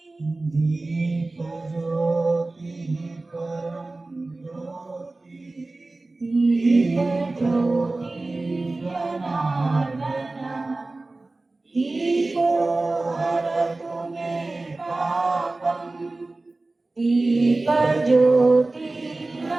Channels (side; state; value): left; quieter; 3.1 dB